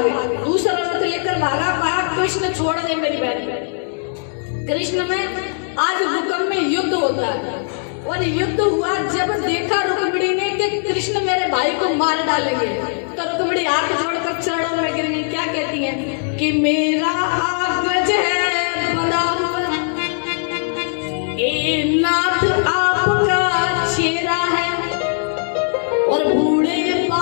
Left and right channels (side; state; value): right; silent; digital silence